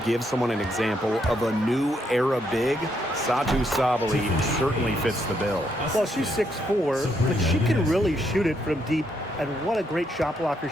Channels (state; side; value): normal; both; correlation 0.76